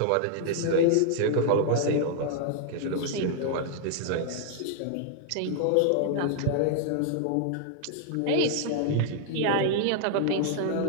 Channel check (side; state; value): both; different; correlation 0.00